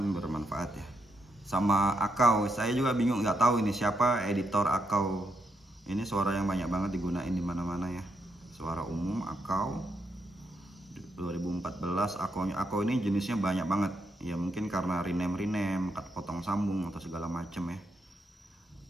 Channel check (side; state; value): both; normal; correlation 0.80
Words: bermanfaat ya. Sama Akau, saya juga bingung, nggak tahu ini siapa editor Akau. Ini suara yang banyak banget digunain di mana-mana ya. Suara umum Akau 2014. Akau ini jenisnya banyak banget. Ya mungkin karena rename, potong sambung atau segala macem ya.